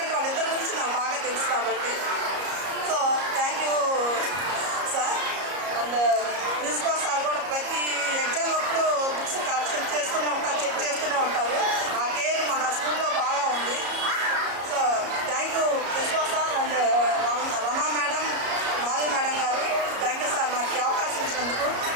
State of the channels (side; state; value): left; late; 34 ms